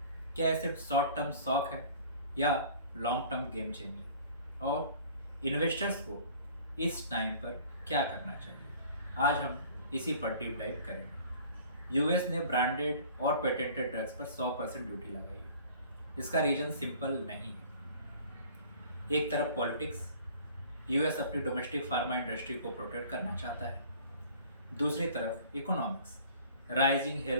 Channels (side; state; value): both; inverted; correlation -0.49